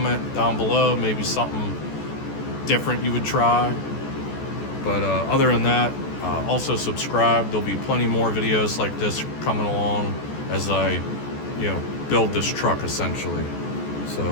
down below, maybe something different you would try. But other than that, also subscribe. There'll be plenty more videos like this coming along as I, build this truck essentially.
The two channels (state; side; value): late; right; 14 ms